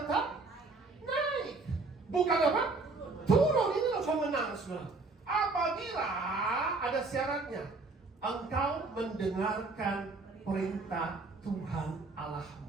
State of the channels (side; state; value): left; quieter; 3.7 dB